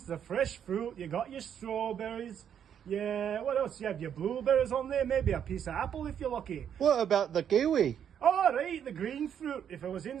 the fresh fruit, you got your strawberries. Yeah, what else? You have your blueberries on there, maybe a piece of apple if you're lucky. What about the kiwi? All right, the green fruit. If it was in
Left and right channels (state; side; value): quieter; left; 8.8 dB